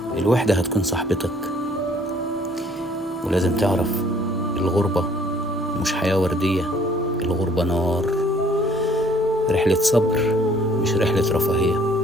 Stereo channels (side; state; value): both; normal; correlation 0.59